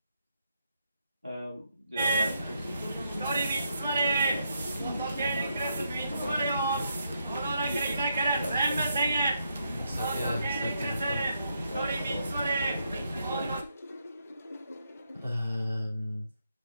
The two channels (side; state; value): both; inverted; correlation -0.79